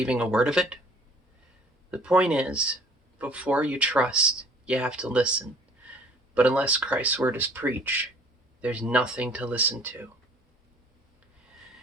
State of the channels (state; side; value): normal; both; correlation 0.54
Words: a word of it? The point is, before you trust, you have to listen. But unless Christ's word is preached, there's nothing to listen